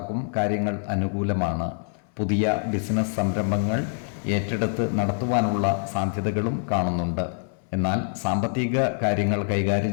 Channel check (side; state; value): right; silent; 62 dB below the other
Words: കാര്യങ്ങൾ അനുകൂലമാണ്. പുതിയ ബിസിനസ് സംരംഭങ്ങൾ ഏറ്റെടുത്ത് നടത്തുവാനുള്ള സാധ്യതകളും കാണുന്നുണ്ട്. എന്നാൽ സാമ്പത്തിക കാര്യങ്ങൾ